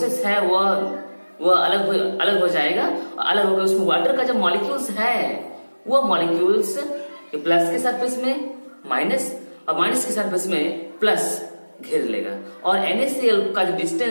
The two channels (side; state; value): both; inverted; correlation -1.00